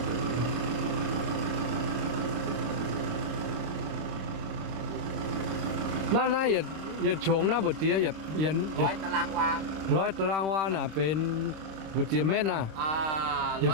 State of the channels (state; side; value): late; left; 26 ms